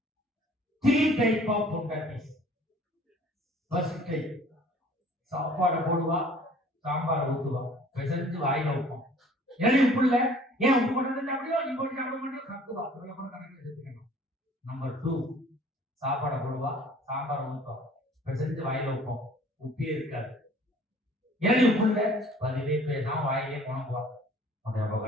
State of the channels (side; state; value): both; normal; correlation 0.52